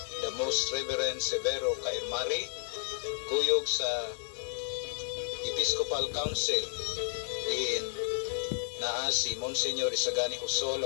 the Most Reverend Severo Cairmari, kuyog sa Episcopal Council diin naa si Monsignor Isagani Husol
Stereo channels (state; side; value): silent; right; digital silence